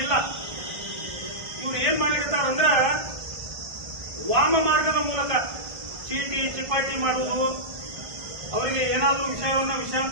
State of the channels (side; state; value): left; late; 1.2 ms